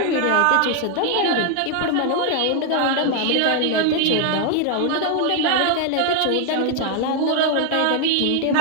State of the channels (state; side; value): different; both; correlation 0.00